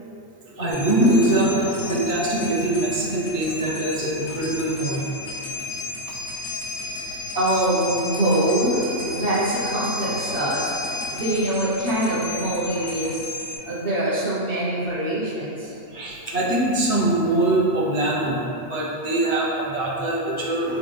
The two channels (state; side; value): late; right; 8.3 ms